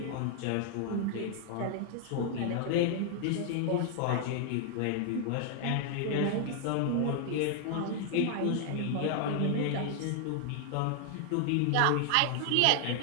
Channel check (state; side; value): different; both; correlation 0.00